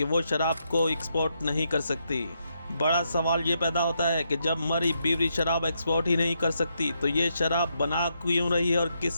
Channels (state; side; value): inverted; both; correlation -0.80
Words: वो शराब को एक्सपोर्ट नहीं कर सकती। बड़ा सवाल ये पैदा होता है कि जब मरी ब्रूअरी शराब एक्सपोर्ट ही नहीं कर सकती तो ये शराब बना क्यों रही है और